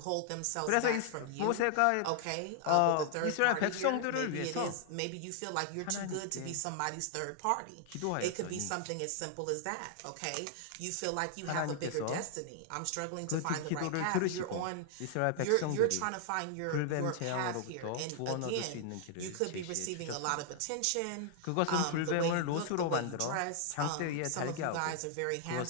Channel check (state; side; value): different; both; correlation 0.00